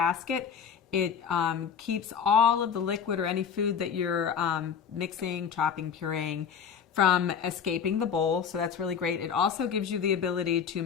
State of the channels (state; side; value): quieter; right; 7.2 dB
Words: It keeps all of the liquid or any food that you're mixing, chopping, pureeing from escaping the bowl, so that's really great. It also gives you the ability to